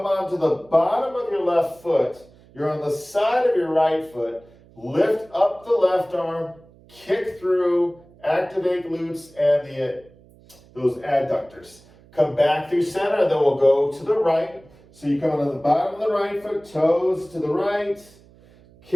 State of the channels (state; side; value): noise; right; hum, 26 dB below the sound